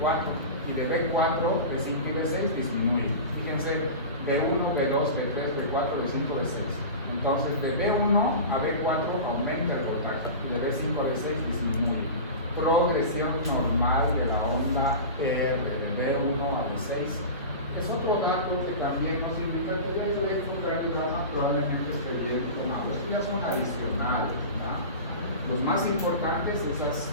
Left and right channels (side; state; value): both; inverted; correlation -0.30